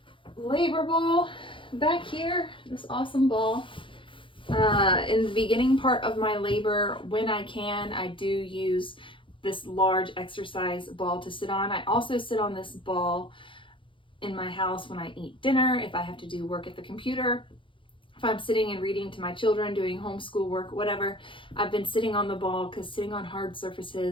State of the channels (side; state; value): right; late; 0.25 ms